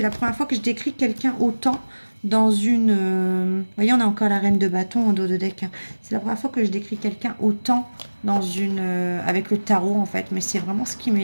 la première fois que je décris quelqu'un autant dans une... Vous voyez, on a encore la reine de bâton en dos de deck. Hein. C'est la première fois que je décris quelqu'un autant dans une... avec le tarot, en fait. Mais c'est vraiment ce qui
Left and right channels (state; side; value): inverted; both; correlation -1.00